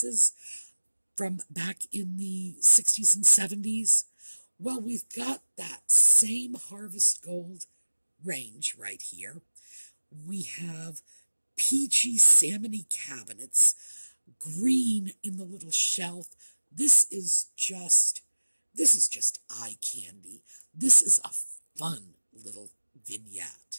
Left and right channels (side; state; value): both; inverted; correlation -1.00